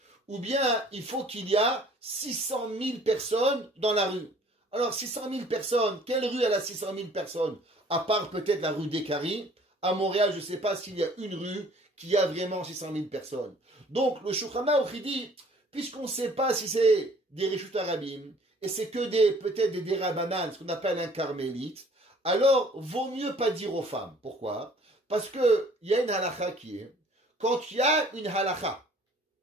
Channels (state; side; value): normal; both; correlation 0.54